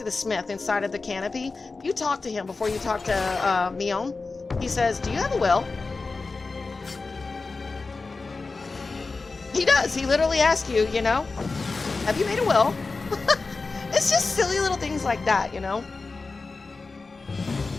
the smith inside of the canopy. You talk to him before you talk to Mion. He says, do you have a will? He does. He literally asks you, you know, have you made a will? It's just silly little things like that, you know?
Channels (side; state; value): right; quieter; 3.9 dB